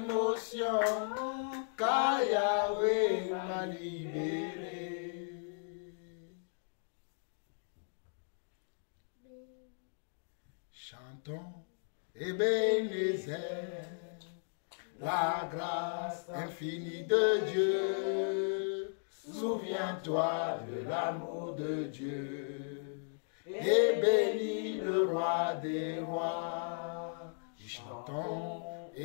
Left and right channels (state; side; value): silent; right; digital silence